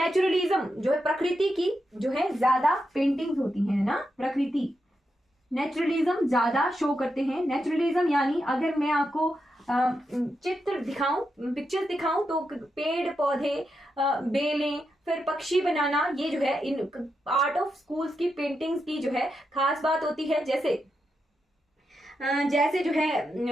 जो है प्रकृति की जो है ज्यादा पेंटिंग्स होती हैं ना, प्रकृति नेचुरलिज्म ज्यादा शो करते हैं। नेचुरलिज्म यानी अगर मैं आपको चित्र दिखाऊं, पिक्चर्स दिखाऊं, तो पेड़ पौधे, बेलें, फिर पक्षी बनाना, ये जो है इन आर्ट ऑफ स्कूल्स की पेंटिंग्स की जो है खास बात होती है। जैसे जो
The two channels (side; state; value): both; normal; correlation 0.85